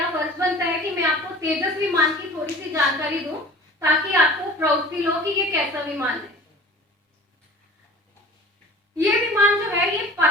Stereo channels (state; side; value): normal; both; correlation 0.43